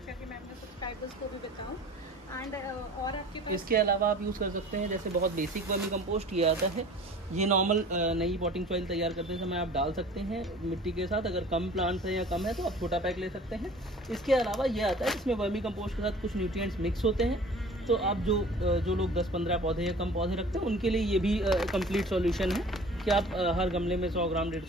कि मैं अपने सब्सक्राइबर्स को भी बताऊँ। एंड और आपके पास इसके अलावा आप यूज़ कर सकते हैं जैसे बहुत बेसिक वर्मी कंपोस्ट ये आता है। ये नॉर्मल नई पॉटिंग सॉइल तैयार करते समय आप डाल सकते हैं मिट्टी के साथ। अगर कम प्लांट्स है या कम है तो आप छोटा पैक ले सकते हैं। इसके अलावा ये आता है इसमें वर्मी कंपोस्ट के साथ कुछ न्यूट्रिएंट्स मिक्स होते हैं। तो आप जो लोग 10-15 पौधे या कम पौधे रखते हैं उनके लिए ये भी कंप्लीट सॉल्यूशन है कि आप हर गमले में 100 ग्राम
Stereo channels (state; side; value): normal; both; correlation 0.45